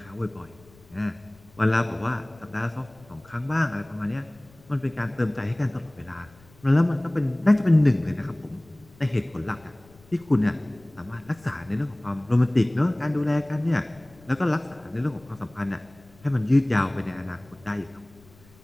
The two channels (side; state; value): left; noise; rumble, 26 dB below the sound